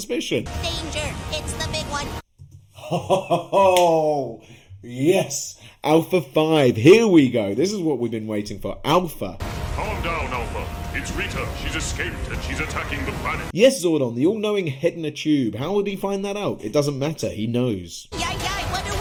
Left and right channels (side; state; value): both; identical; correlation 1.00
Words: Danger, it's the big one. Oh, yes. Alpha 5. Here we go. This is what we've been waiting for. Alpha. Calm down, Alpha. It's Rita. She's escaped and she's attacking the planet. Yes, Zordon, the all-knowing head in a tube. How would he find that out? It doesn't matter. He knows. Yay, what do